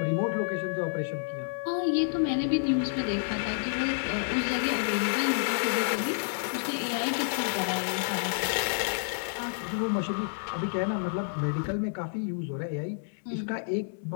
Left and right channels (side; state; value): right; silent; digital silence